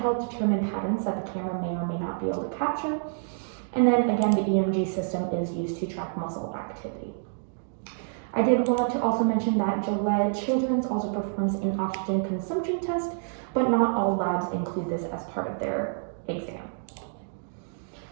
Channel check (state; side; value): silent; left; digital silence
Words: determine patterns that the camera may or may not be able to capture. And then again, the EMG system is used to track muscle activity. I did want to also mention that Gillette Children's also performs an oxygen consumption test, but not all labs include this as part of their exam.